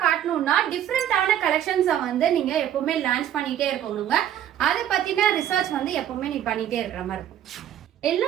காட்டணும்னா டிஃப்ரெண்டான கலெக்ஷன்ஸை வந்து நீங்க எப்பவுமே லான்ச் பண்ணிட்டே இருக்கணுங்க. அதை பத்தின ரிசர்ச் வந்து எப்பவுமே நீ பண்ணிட்டே இருக்கிற மாதிரி இருக்கும்.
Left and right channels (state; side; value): quieter; left; 10.8 dB